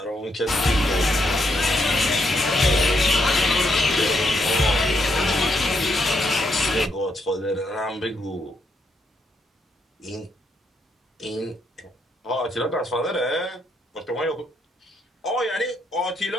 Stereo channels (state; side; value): normal; both; correlation 0.77